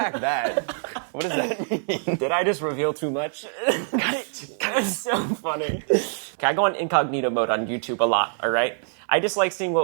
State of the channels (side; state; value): left; silent; 62 dB below the other